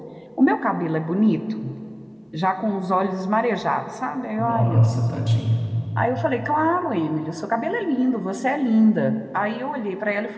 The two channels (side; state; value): both; identical; correlation 1.00